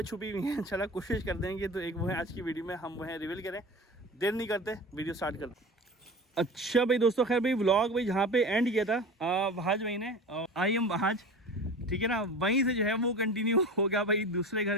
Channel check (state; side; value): normal; both; correlation 0.34